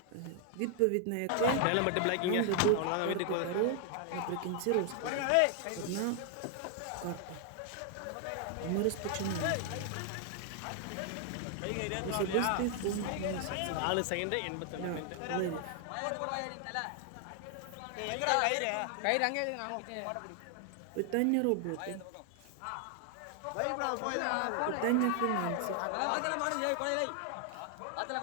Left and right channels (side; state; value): both; different; correlation 0.00